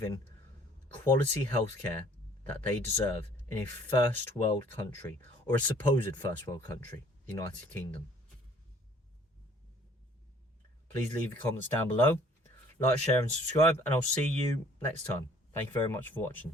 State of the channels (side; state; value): both; normal; correlation 0.57